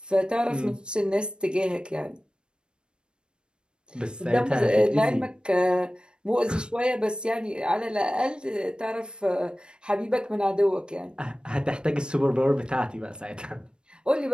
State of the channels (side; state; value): left; late; 0.052 ms